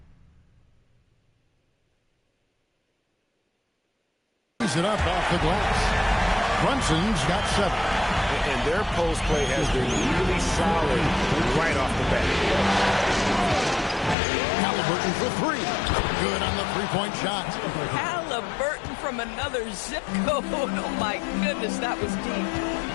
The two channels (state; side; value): drops out; right; at 14.2 s